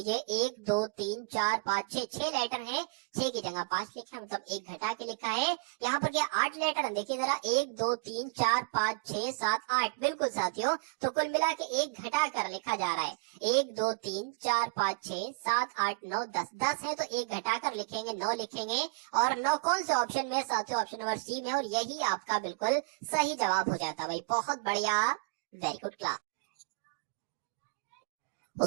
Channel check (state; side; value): quieter; left; 32.9 dB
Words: 1 2 3 4 5 6 लेटर है। 6 की जगह 5 लिखा, मतलब 1 घटा के लिखा है। यहाँ पर क्या 8 लेटर, देखिए जरा, 1 2 3 4 5 6 7 8, बिल्कुल साथियों। तो कुल मिला के 1 घटा कर लिखा जा रहा है। 1 2 3 4 5 6 7 8 9 10, 10 है तो 1 घटाकर लिखेंगे, 9 लिखेंगे। और 9 कौन से ऑप्शन में, साथियों ऑप्शन नंबर सी में, और यही आपका बिल्कुल सही जवाब हो जाता भाई। बहुत बढ़िया, वेरी गुड क्लास।